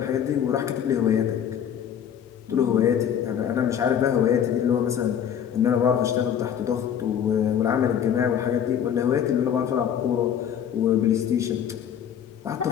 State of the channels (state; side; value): quieter; right; 8.9 dB